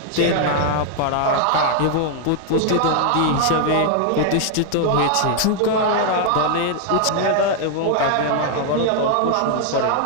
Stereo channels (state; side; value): different; both; correlation 0.00